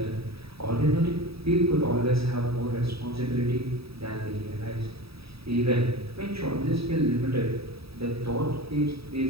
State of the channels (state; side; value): late; left; 0.77 ms